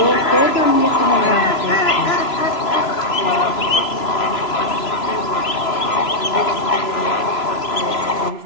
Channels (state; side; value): late; right; 3.0 ms